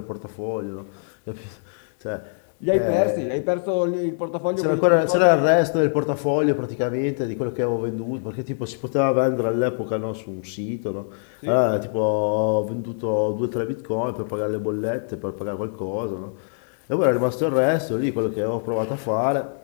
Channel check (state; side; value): silent; right; 63 dB below the other